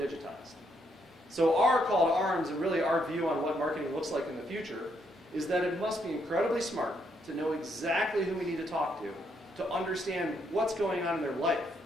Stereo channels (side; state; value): both; normal; correlation 0.75